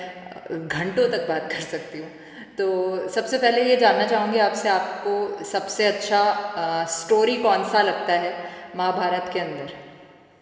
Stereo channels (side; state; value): both; identical; correlation 1.00